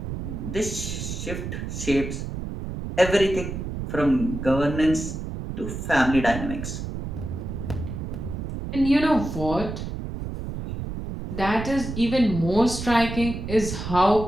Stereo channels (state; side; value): noise; right; rumble, 6 dB below the sound